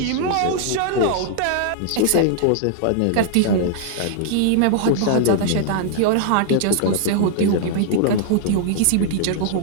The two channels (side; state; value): both; different; correlation -0.01